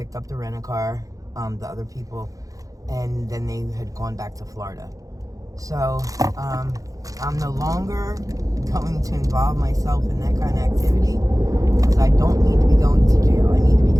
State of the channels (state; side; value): late; left; 0.17 ms